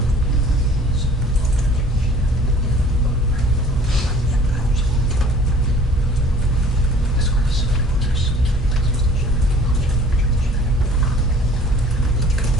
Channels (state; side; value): normal; both; correlation 0.51